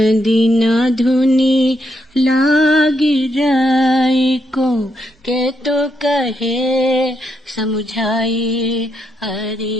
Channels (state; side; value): normal; both; correlation 0.79